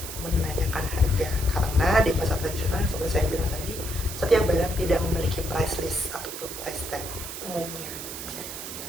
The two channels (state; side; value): noise; right; hiss, 8 dB below the sound